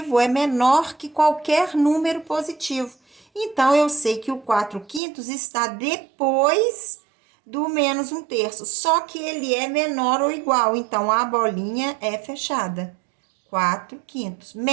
é menor que qualquer número positivo. Então, eu sei que o 4/5 está depois do menos um terço, só que ele é menor ou igual, então a bolinha é fechada. 4/5.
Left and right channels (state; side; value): drops out; left; at 5.0 s